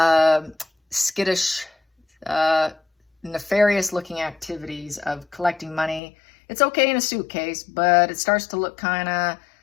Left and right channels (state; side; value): drops out; right; at 6.0 s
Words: skittish, nefarious looking activities of collecting money. It's okay in a suitcase, but it starts to look kind of